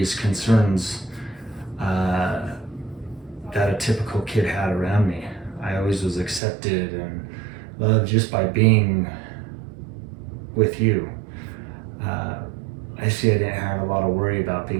concerns that a typical kid had around me. I always was accepted and loved just by being with you. I see I didn't have a lot of worry about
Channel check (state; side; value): drops out; left; at 6.4 s